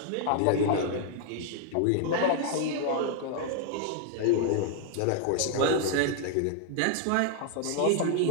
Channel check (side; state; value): both; different; correlation 0.00